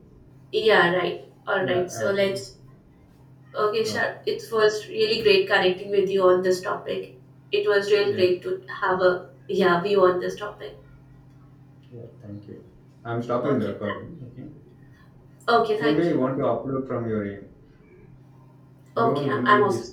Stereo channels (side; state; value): both; identical; correlation 1.00